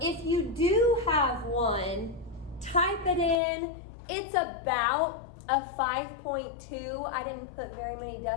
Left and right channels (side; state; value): right; drops out; at 3.4 s